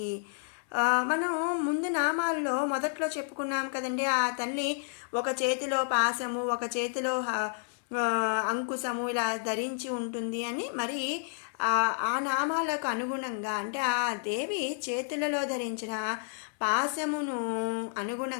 మనం ముందు నామాల్లో మొదట్లో చెప్పుకున్నాం కదండి. ఆ తల్లి ఒక చేతిలో పాసము, ఒక చేతిలో అంకుశము ఇలా ధరించి ఉంటుంది అని మరి ఆ నామాలకు అనుగుణంగా అంటే ఆ దేవి చేతులలో ధరించిన పాశమును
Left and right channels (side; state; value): right; silent; 57 dB below the other